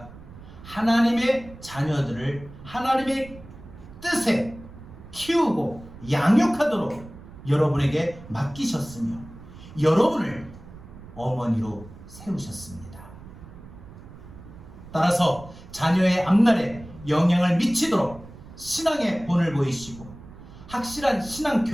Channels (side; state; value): right; noise; rumble, 17 dB below the sound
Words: 하나님의 자녀들을 하나님의 뜻에 키우고 양육하도록 여러분에게 맡기셨으며 여러분을 어머니로 세우셨습니다. 따라서 자녀의 앞날에 영향을 미치도록 신앙의 본을 보이시고 확실한 신앙